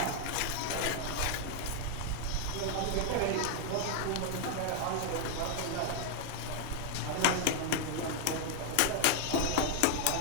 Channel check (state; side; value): different; both; correlation 0.00